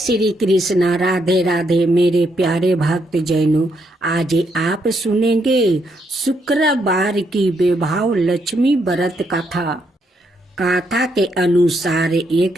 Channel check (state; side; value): normal; both; correlation 0.76